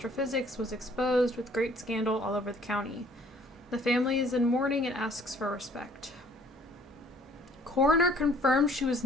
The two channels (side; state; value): both; normal; correlation 0.58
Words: was exposed with great scandal all over the county. The family is in mourning and asks for respect. Coroner confirmed she was